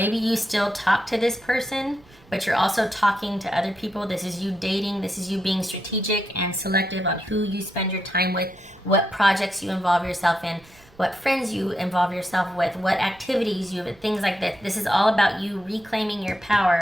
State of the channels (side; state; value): right; noise; rumble, 27 dB below the sound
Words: you still talk to this person, but you're also talking to other people. This is you dating. This is you being strategic and selective on who you spend your time with, what projects you involve yourself in, what friends you involve yourself with, what activities you have, things like that. This is all about you reclaiming your